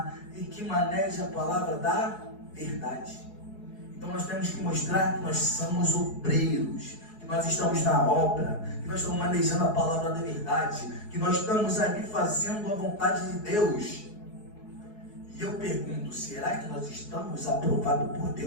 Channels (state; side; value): late; right; 4.7 ms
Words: e que maneja a palavra da verdade. Então nós temos que mostrar que nós somos obreiros, que nós estamos na obra, que nós estamos manejando a palavra da verdade, que nós estamos ali fazendo a vontade de Deus. E eu pergunto, será que nós estamos aprovados por